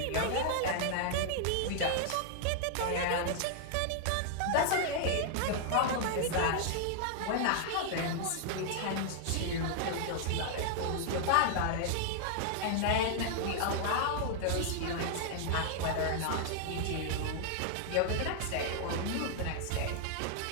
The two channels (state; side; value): different; both; correlation -0.01